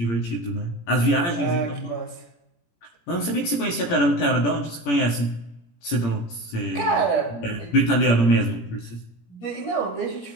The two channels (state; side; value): late; right; 17 ms